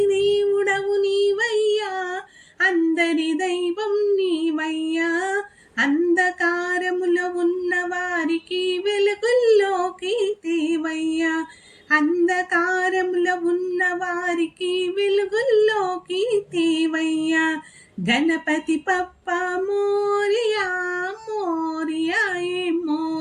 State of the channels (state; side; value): identical; both; correlation 1.00